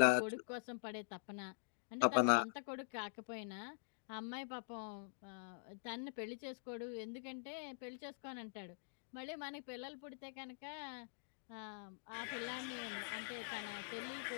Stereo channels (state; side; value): silent; right; digital silence